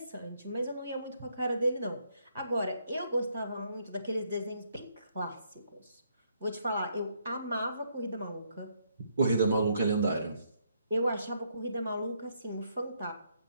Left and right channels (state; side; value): inverted; both; correlation -0.73